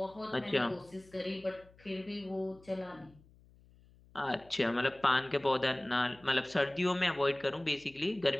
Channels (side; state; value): left; noise; hum, 27 dB below the sound